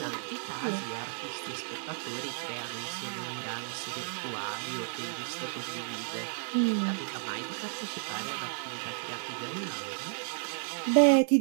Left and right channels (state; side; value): silent; left; 56 dB below the other